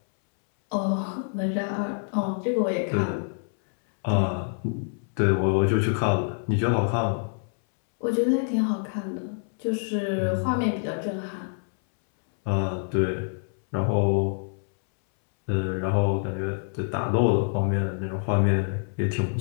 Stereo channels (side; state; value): right; silent; 61 dB below the other